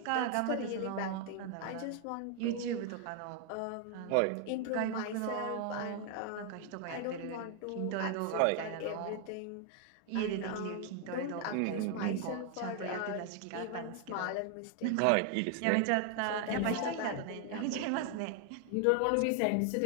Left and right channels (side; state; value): both; different; correlation 0.00